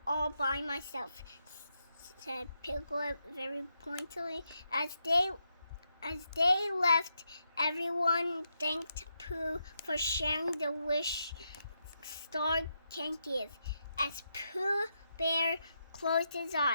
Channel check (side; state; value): both; inverted; correlation -0.83